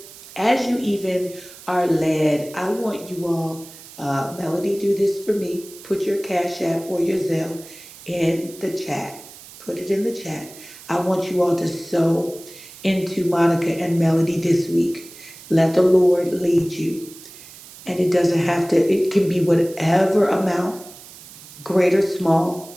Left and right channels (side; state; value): right; noise; hiss, 18 dB below the sound